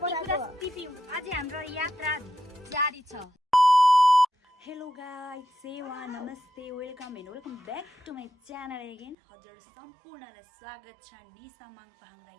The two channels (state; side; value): drops out; left; at 9.2 s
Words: अझै हाम्रो यात्रा जारी छ। हेलो गाइस, सेवा नमस्ते, welcome and welcome back to my channel again. हजुर सम्पूर्णलाई स्वागत छ निसा माङपाहाङरा